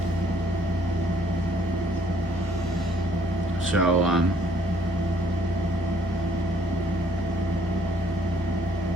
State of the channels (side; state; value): both; normal; correlation 0.63